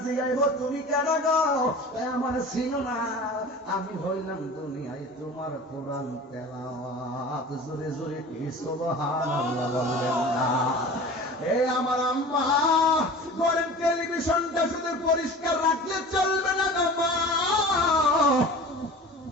জিগাইব, তুমি কেন গো, আমার ছিল না, আমি হইলাম দুনিয়ায় তোমার কোরআন তেলাওয়াত। জোরে জোরে কি সুবহানাল্লাহ বলবেন না? এ আমার আম্মা, ঘরের টেলিভিশনটা শুধু পরিষ্কার রাখলে চলবে না গো মা,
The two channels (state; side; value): normal; both; correlation 0.39